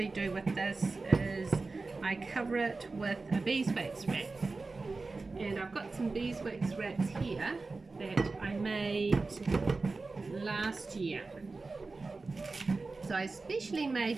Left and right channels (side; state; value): left; quieter; 3.7 dB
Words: do with this is I cover it with a beeswax wrap. And I've got some beeswax wraps here that I made last year. So I specially made